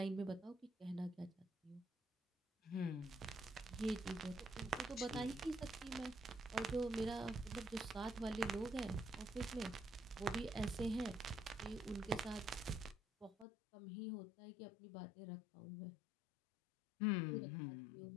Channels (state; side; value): drops out; right; at 13.5 s